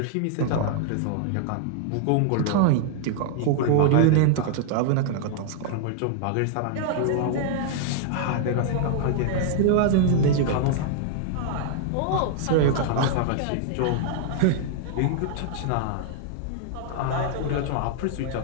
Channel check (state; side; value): different; both; correlation -0.01